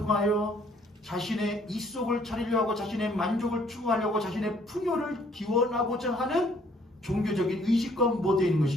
자신의 이속을 차리려 하고 자신의 만족을 추구하려고 자신의 풍요를 기원하고자 하는 종교적인 의식과 모두에 있는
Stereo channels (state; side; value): normal; both; correlation 0.62